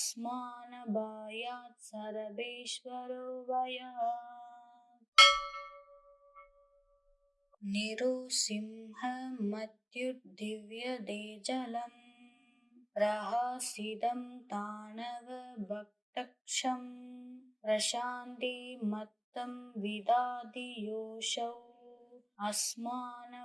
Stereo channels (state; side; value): identical; both; correlation 1.00